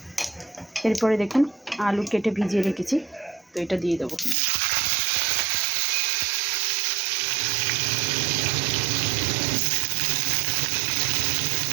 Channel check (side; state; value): left; drops out; at 4.4 s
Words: এরপরে দেখুন আলু কেটে ভিজিয়ে রেখেছি, তো এটা দিয়ে দেবো।